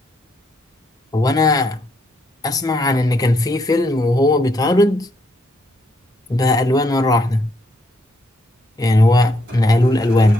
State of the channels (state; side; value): normal; both; correlation 0.74